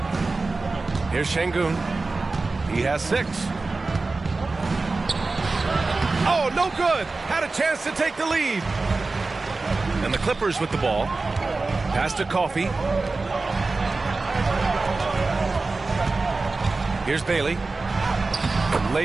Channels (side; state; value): left; quieter; 3.6 dB